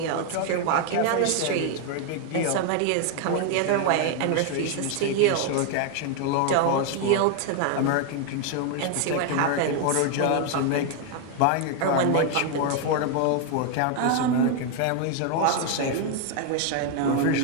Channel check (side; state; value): both; different; correlation 0.01